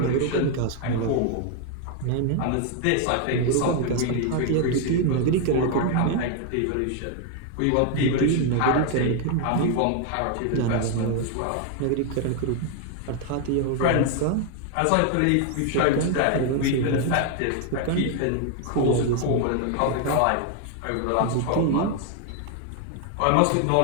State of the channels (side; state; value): both; different; correlation 0.01